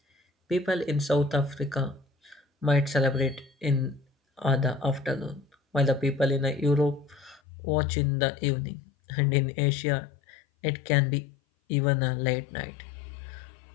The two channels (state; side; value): drops out; right; at 7.4 s